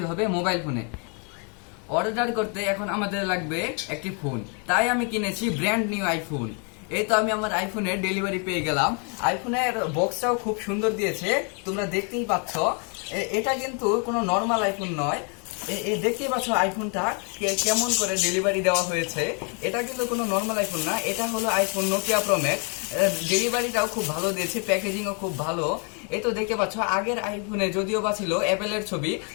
হবে মোবাইল ফোনে। অর্ডার করতে এখন আমাদের লাগবে একটি ফোন, তাই আমি কিনেছি ব্র্যান্ড নিউ আইফোন। এই তো আমি আমার আইফোনের ডেলিভারি পেয়ে গেলাম। আইফোনের বক্সটাও খুব সুন্দর দিয়েছে, তোমরা দেখতেই পাচ্ছ। এটা কিন্তু কোনো নর্মাল আইফোন নয়। দেখতেই পাচ্ছ আইফোনটা কেমন করে ডেলিভারি দেওয়া হয়েছে। এটা কিন্তু কোনো নর্মাল আইফোন না, এটা হলো আইফোন নোকিয়া প্রো ম্যাক্স। ডেলিভারিটাও খুব ভালো দিয়েছে, প্যাকেজিংও খুব ভালো। এই তো দেখতে পাচ্ছ, আগের আইফোনে যদিও বা ছিল অ্যাপেলের ছবি,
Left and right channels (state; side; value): quieter; right; 37.5 dB